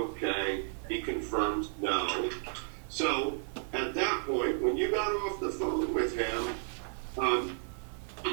He confirms no. So at that point, when you got off the phone with him,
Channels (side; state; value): left; silent; 56 dB below the other